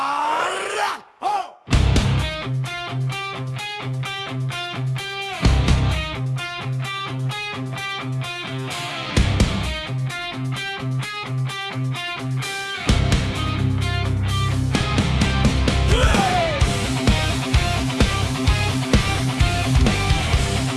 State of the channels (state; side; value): identical; both; correlation 1.00